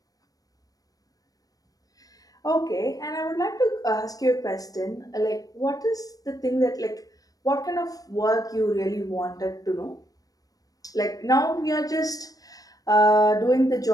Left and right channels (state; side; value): late; right; 0.18 ms